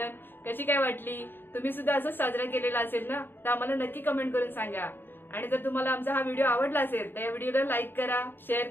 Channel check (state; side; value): late; right; 0.098 ms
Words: कशी काय वाटली? तुम्ही सुद्धा असंच साजरा केलेला असेल ना? तर आम्हाला नक्की कमेंट करून सांगा. आणि जर तुम्हाला आमचा हा व्हिडिओ आवडला असेल तर या व्हिडिओला लाईक करा, शेअर